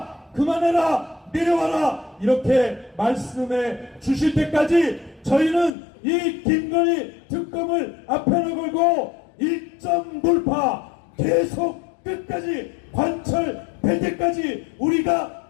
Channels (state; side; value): drops out; right; at 5.8 s